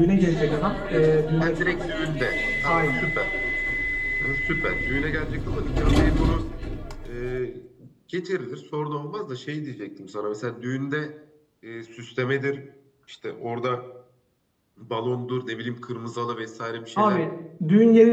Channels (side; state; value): both; identical; correlation 1.00